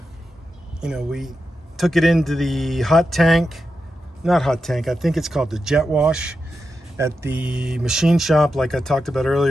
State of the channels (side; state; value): both; normal; correlation 0.89